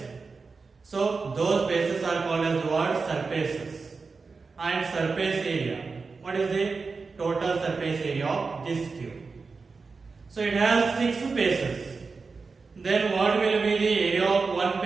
So those faces are called as the word surfaces. And surface area, what is the total surface area of this cube? So it has 6 faces. Then what will be the area of one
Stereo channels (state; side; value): quieter; left; 4.5 dB